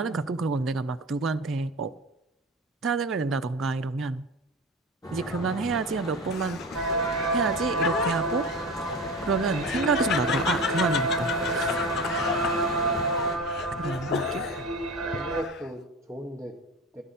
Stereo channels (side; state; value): both; normal; correlation 0.30